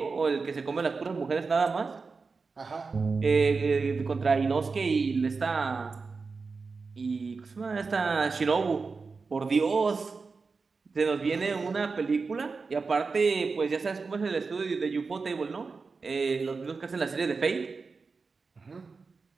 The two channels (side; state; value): left; quieter; 4.5 dB